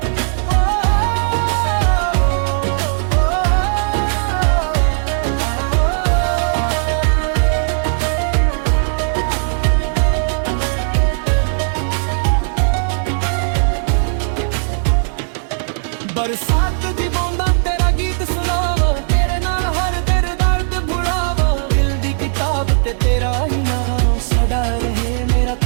बरसात दी बूंदां तेरा गीत सुनावा तेरे नाल हर दिल दर्द भुलावा दिल दी किताब ते तेरा ही नाम सदा रहे मेरा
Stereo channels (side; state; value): left; silent; 68 dB below the other